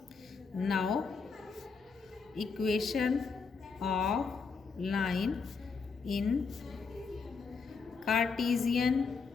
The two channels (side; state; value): right; quieter; 5.1 dB